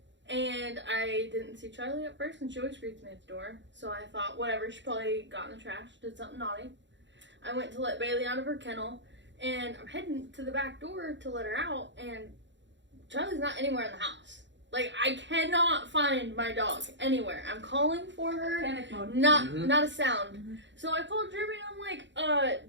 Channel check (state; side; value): late; left; 0.53 ms